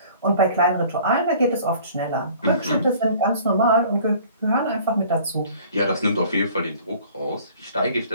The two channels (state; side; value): inverted; both; correlation -0.50